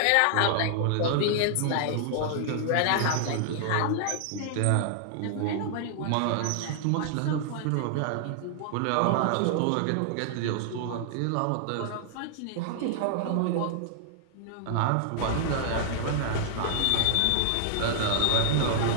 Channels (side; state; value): both; different; correlation -0.01